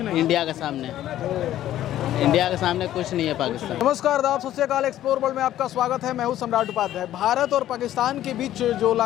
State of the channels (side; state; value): right; quieter; 12.8 dB